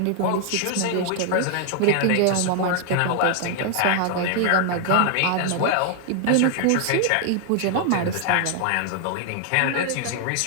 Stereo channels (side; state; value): both; different; correlation 0.00